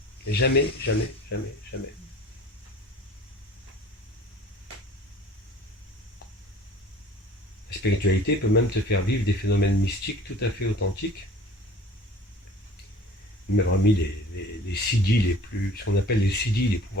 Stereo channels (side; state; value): both; normal; correlation 0.47